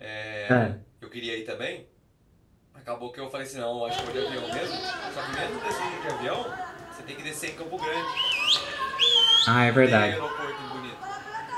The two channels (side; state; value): both; identical; correlation 1.00